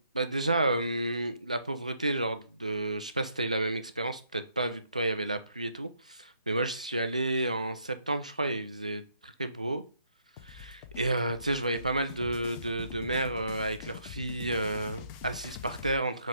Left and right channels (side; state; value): both; inverted; correlation -0.72